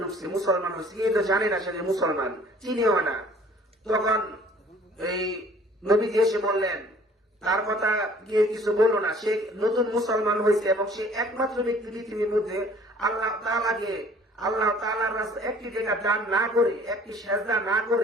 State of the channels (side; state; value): both; normal; correlation 0.54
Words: ঢুকছে, মুসলমান হচ্ছে, কেউ তো জানে না সে মুসলমান, চিনিও না। তখন এই নবীজি এসে বললেন, তার কথা গিয়ে কিছু বলো না, সে নতুন মুসলমান হয়েছে এবং সে একমাত্র ব্যক্তি পৃথিবীর মধ্যে আল্লাহ তাআলার রাস্তায় একটি জায়গা দান না করে, একটি সেজদা না